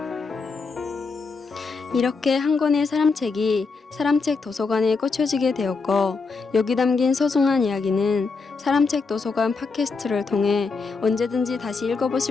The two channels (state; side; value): quieter; right; 4.4 dB